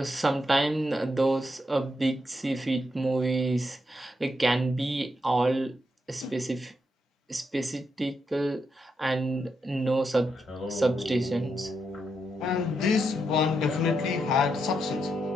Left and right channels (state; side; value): normal; both; correlation 0.82